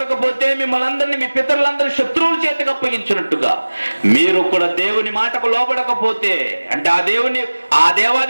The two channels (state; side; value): inverted; both; correlation -1.00